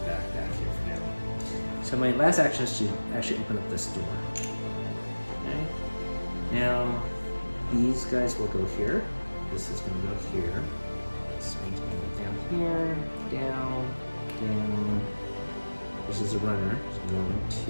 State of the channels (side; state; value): both; inverted; correlation -1.00